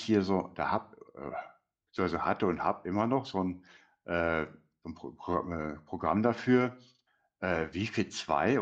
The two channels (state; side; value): identical; both; correlation 1.00